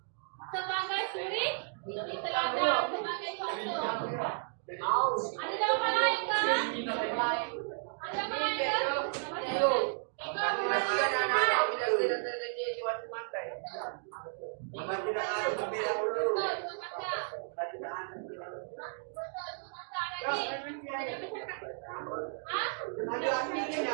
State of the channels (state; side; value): silent; left; digital silence